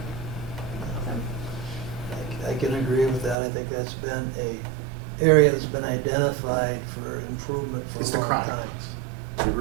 So, I can agree with that. I think that's been a area that's been identified for improvement for It's a the long chronic. time. It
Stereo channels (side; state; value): left; drops out; at 3.4 s